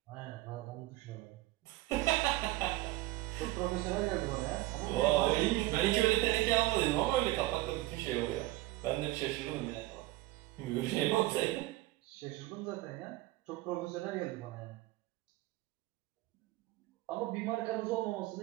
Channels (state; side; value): quieter; left; 18.3 dB